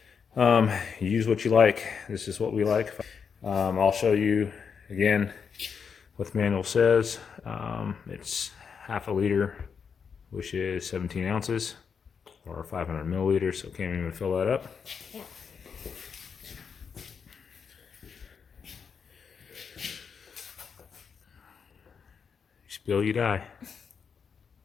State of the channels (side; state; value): right; quieter; 6.4 dB